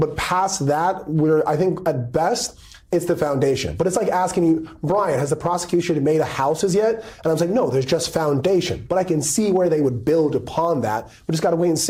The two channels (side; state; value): both; identical; correlation 1.00